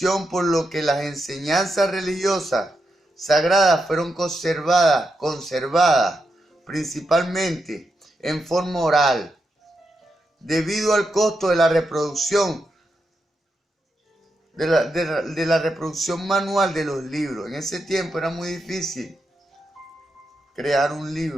por lo que las enseñanzas religiosas sagradas fueron conservadas principalmente en forma oral, debido al costo de la reproducción, de la reproducción manual de los libros. En ese tiempo era muy difícil crear un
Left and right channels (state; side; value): normal; both; correlation 0.85